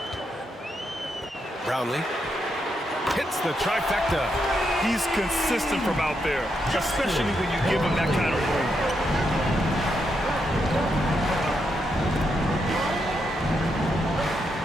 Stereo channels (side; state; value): both; normal; correlation 0.81